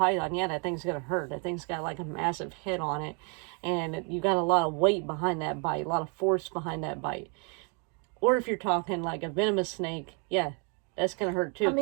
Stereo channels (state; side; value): quieter; left; 36.8 dB